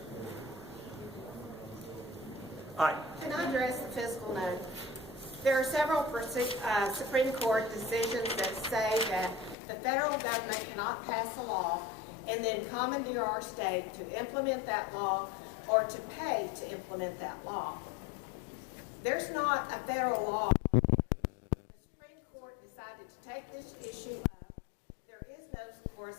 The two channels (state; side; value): drops out; right; at 9.6 s